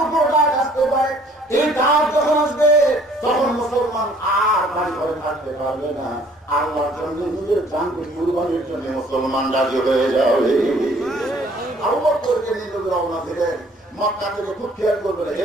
উপর ডাক আসতে পারে। এই ডাক যখন আসবে তখন মুসলমান আর বাড়ি ঘরে থাকতে পারবে না, আল্লাহর জন্য নিজের জানকে কুরবানির জন্য মুসলমান রাজি হয়ে যাবে। আবু বকরকে নিয়ে রওনা দিলেন মক্কা থেকে। খুব খেয়াল করবেন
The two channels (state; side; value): normal; both; correlation 0.58